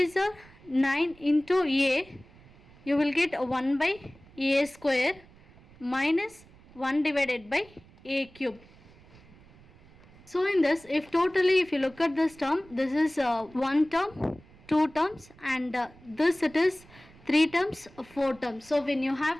are 9 into a, you will get 1 by a square minus 1 divided by a cube. So in this, if you look at this term, this is 1 term, 2 terms and this it is 3 terms, 4 terms. So when you have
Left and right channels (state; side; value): noise; right; rumble, 25 dB below the sound